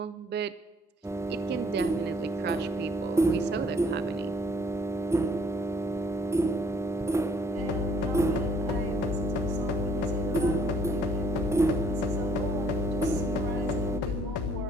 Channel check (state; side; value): normal; both; correlation 0.62